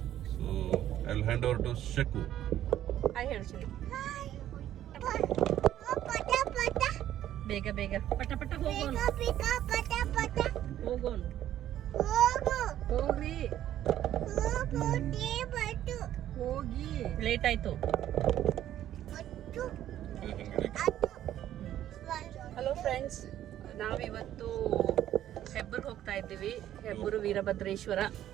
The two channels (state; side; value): quieter; left; 12.0 dB